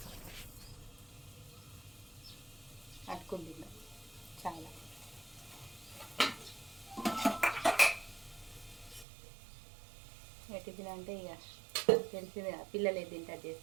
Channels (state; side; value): drops out; left; at 9.1 s